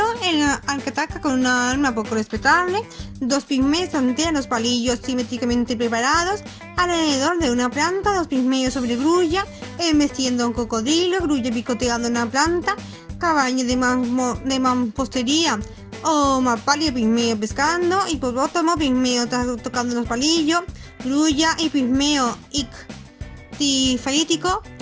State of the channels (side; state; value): both; identical; correlation 1.00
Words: al que ataca con una arma poco respetable. 2 pigmeos tantean los palillos simétricamente preparados alrededor de una planta. 2 pigmeos sobre grulla embestiendo a un cocodrilo. Grulla picoteando una planta. Caballo de mampostería o mapalia pigmeo pescando. Hipopótamo pigmeo tocando los palillos. Grulla y pigmeo ictifalítico